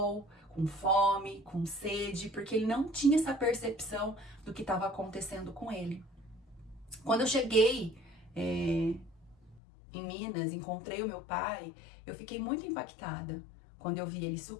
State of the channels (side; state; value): right; drops out; at 9.6 s